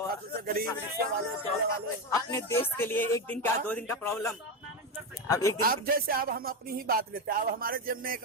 से गरीब, रिक्शे वाले, ठेले वाले। अपने देश के लिए एक दिन का 2 दिन का प्रॉब्लम, अब एक दिन अब जैसे अब हम अपनी ही बात लेते हैं, अब हमारे जेब में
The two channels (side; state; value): both; normal; correlation 0.13